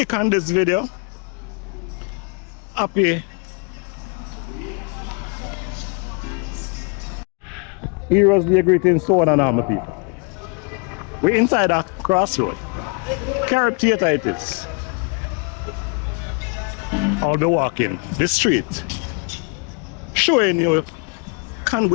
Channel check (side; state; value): right; quieter; 35.3 dB